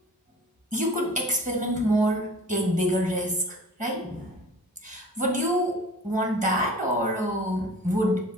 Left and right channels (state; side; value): normal; both; correlation 0.43